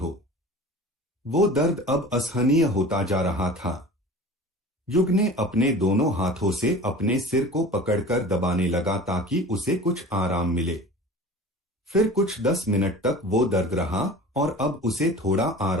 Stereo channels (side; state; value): both; normal; correlation 0.39